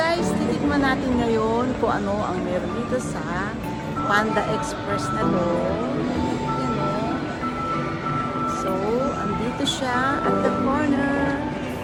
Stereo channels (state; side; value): identical; both; correlation 1.00